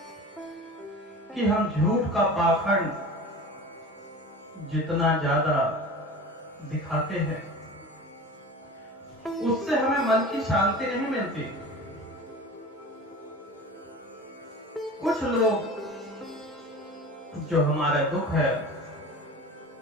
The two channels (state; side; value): normal; both; correlation 0.36